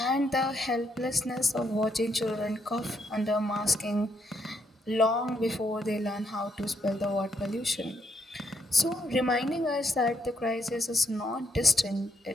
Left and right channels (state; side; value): normal; both; correlation 0.74